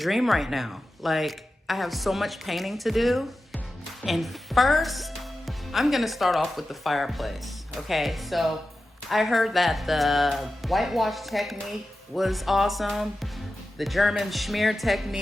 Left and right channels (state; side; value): normal; both; correlation 0.93